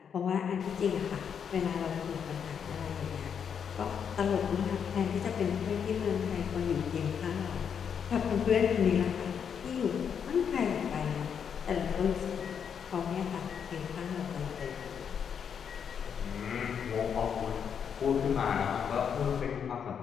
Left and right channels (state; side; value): quieter; right; 7.4 dB